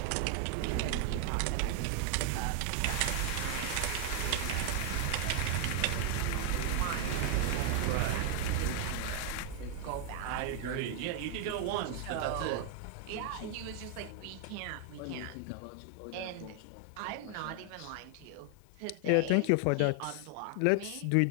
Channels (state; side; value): different; both; correlation 0.00